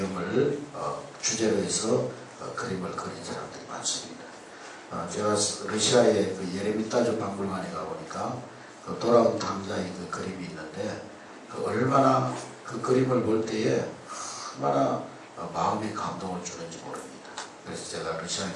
주제로 해서 그림을 그린 사람들이 많습니다. 제가 러시아의 그 예레미타주 박물관에 가보니까 그 돌아온 탕자의 그 그림이 있는데 얼마나 그 그림을 볼 때에 얼마나 마음에 감동을 주는지 모릅니다. 그래서 제가 러시아에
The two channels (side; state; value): both; identical; correlation 1.00